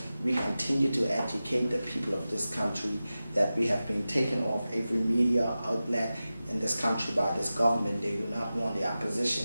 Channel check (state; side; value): inverted; both; correlation -0.95